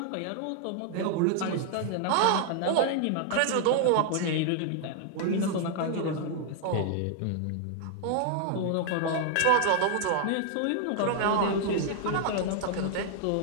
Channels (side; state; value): both; different; correlation 0.00